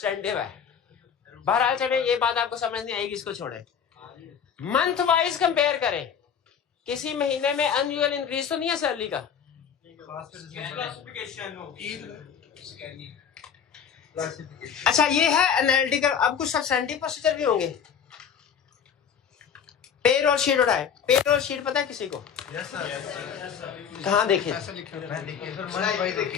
है। बहरहाल चले, ये बात आपको समझ नहीं आएगी, इसको छोड़े। मंथ वाइज कंपेयर करें, किसी महीने में अनयूजुअल इंक्रीज तो नहीं है सैलरी का। अच्छा ये है एनालिटिकल। अब कुछ सब्सटेंटिव प्रोसीजर भी होंगे। पेरोल शीट उठाए, पेरोल शीट पता है किसी को? कहाँ देखे?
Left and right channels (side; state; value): right; quieter; 7.6 dB